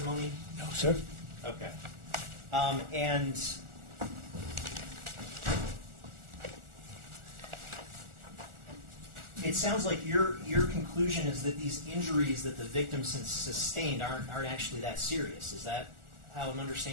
No, sir. Okay. And it sounds like your conclusion is that these injuries that the victim sustained aren't actually that serious. Is that how I'm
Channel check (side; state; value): left; late; 1.4 ms